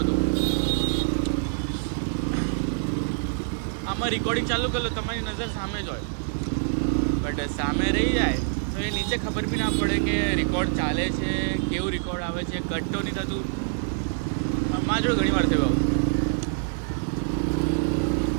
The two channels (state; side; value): silent; left; 61 dB below the other